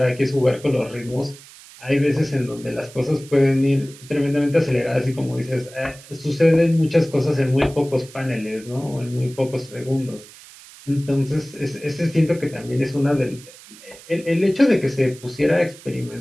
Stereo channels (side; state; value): right; noise; hiss, 20 dB below the sound